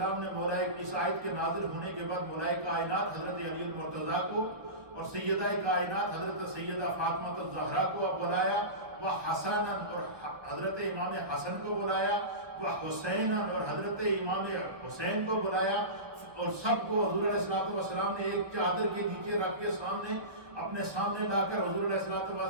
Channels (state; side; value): late; left; 1.6 ms